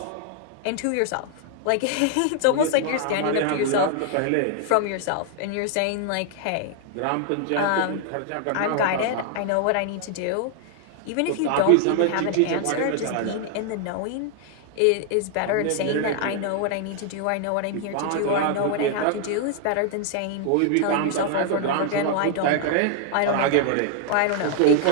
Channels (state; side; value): different; both; correlation 0.00